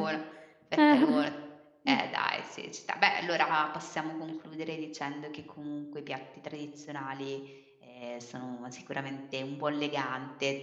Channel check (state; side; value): identical; both; correlation 1.00